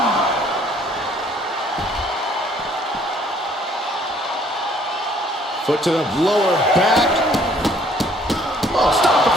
Foot to the lower back. Oh, stop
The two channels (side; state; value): both; normal; correlation 0.60